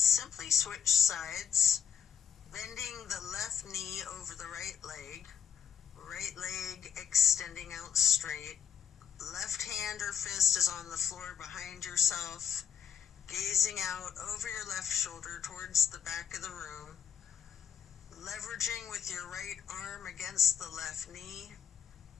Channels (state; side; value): quieter; right; 8.5 dB